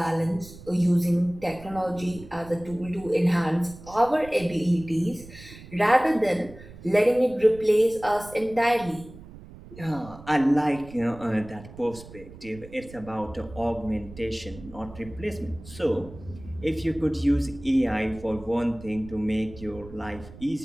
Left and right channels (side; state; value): right; noise; rumble, 17 dB below the sound